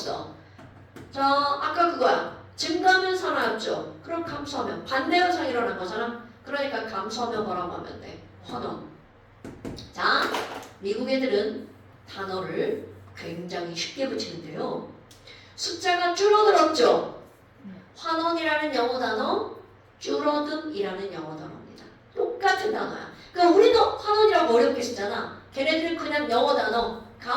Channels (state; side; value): identical; both; correlation 1.00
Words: 자 아까 그거야. 증가하면 산화였죠. 그럼 감소하면 반대 현상이 일어난 거잖아. 그러니까 감소하면 뭐라고 하면 돼? 환원. 자 미국 애들은 단어를 굉장히 쉽게 붙이는데요. 숫자가 줄어들었죠. 환원이라는 영어 단어, 줄어듦이라는 영어 단어입니다. 똑같은 단어야. 그러니까 우리도 환원이라고 어렵게 쓰잖아. 걔네들은 그냥 영어 단어